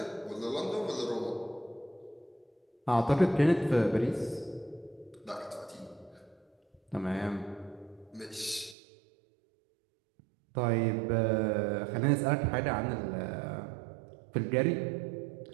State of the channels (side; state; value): left; drops out; at 8.8 s